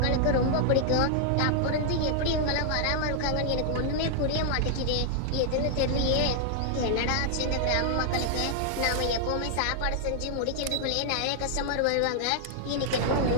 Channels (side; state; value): both; different; correlation -0.01